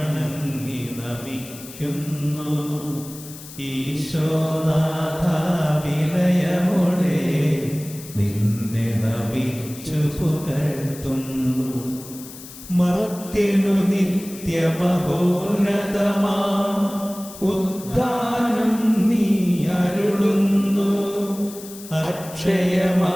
നമിക്കുന്നു. ഈശോനാഥ വിനയമോടെ നിന്നെ നമിച്ചു പുകഴ്ത്തുന്നു. മർത്യനു നിത്യമഹോന്നതമാം ഉദ്ധാനം നീ അരുളുന്നു.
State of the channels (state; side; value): noise; left; hiss, 16 dB below the sound